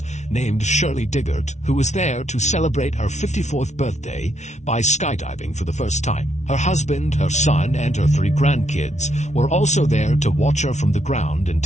named Shirley Diggert, who was there to celebrate her 54th birthday by skydiving for the first time. Her husband, her son, and her 3 grandkids were also there to watch her from the ground and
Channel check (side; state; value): right; late; 0.33 ms